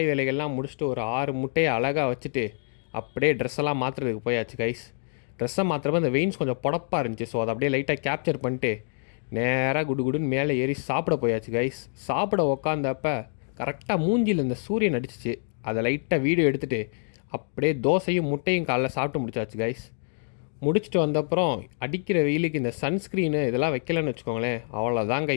வேலைகள்லாம் முடிச்சுட்டு ஒரு 6 முட்டையை அழகாக வச்சுட்டு அப்படியே ட்ரெஸ்ஸெல்லாம் மாற்றுறதுக்கு போயாச்சு கைஸ். ட்ரெஸ்ஸை மாற்றுறப்ப அந்த வெயின்ஸ் கொஞ்சம் புடப்பாக இருந்துச்சு. ஸோ அதை அப்படியே லைட்டாக கேப்சர் பண்ணிட்டு நேராக குடுன்னு மேலே ஏறி சாப்பிட போயாச்சு கைஸ். சாப்பிட உக்காந்தப்ப கரெக்டாக மூஞ்சியில் இந்த சூரியன் அடிச்சிச்சு. அதை லைட்டாக வீடியோ எடுத்துகிட்டு அப்படியே தோசையும் முட்டையும் காலைல சாப்பிட்டு முடிச்சாச்சு கைஸ். முடிச்சுட்டு வந்தப்புறம் அடிக்கிற வெயிலுக்கு இந்த சன்ஸ்க்ரீனு இதெல்லாம் வைக்கலன்னு வச்சுக்கோங்களேன், அவ்வளோதான்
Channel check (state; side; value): silent; right; 61 dB below the other